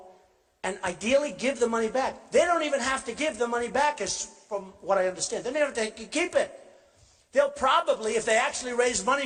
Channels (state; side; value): identical; both; correlation 1.00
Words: and ideally give the money back. They don't even have to give the money back, as from what I understand. They don't have to keep it. They'll probably, if they actually raise money